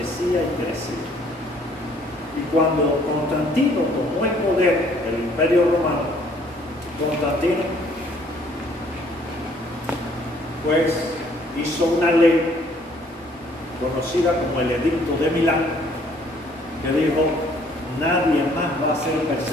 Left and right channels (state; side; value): normal; both; correlation 0.61